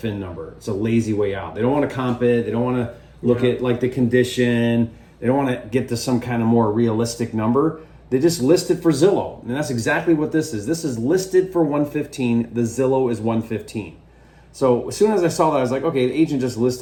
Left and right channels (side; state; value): both; identical; correlation 1.00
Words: number. It's a lazy way out. They don't want to comp it. They don't want to look at like the condition. They don't want to get to some kind of more realistic number. They just list it for Zillow. And that's exactly what this is. This is listed for 115. The Zillow is 115. So as soon as I saw that, I was like, okay, the agent just